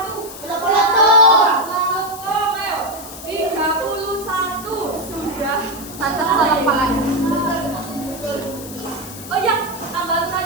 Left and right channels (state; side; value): noise; left; hiss, 14 dB below the sound